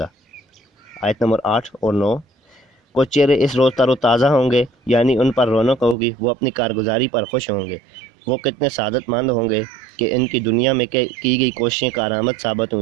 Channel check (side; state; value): left; drops out; at 6.0 s